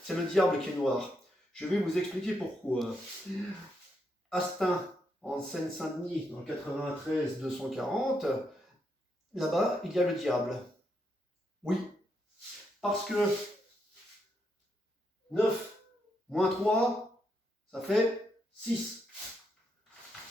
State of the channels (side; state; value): both; normal; correlation 0.80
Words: le diable qui est noir. Je vais vous expliquer pourquoi. Astin, en Seine-Saint-Denis, dans le 93 240, là-bas, il y a le diable. Oui, parce que 9 moins 3, ça fait 6.